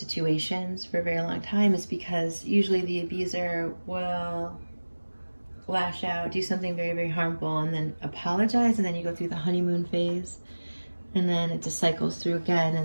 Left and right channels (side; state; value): both; inverted; correlation -1.00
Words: for a very long time. Is because usually the abuser will lash out, do something very, very harmful, and then apologize, and then you go through the honeymoon phase, and then it just cycles through again,